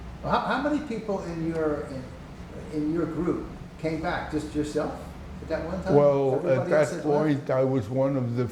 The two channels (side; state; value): both; identical; correlation 1.00